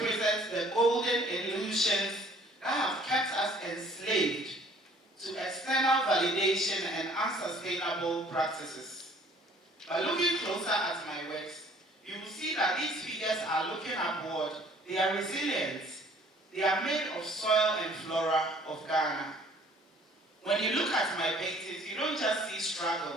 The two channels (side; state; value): both; normal; correlation 0.56